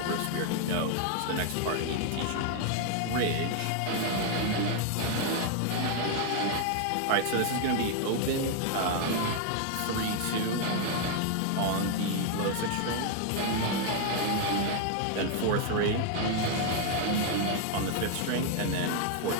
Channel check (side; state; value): both; different; correlation 0.00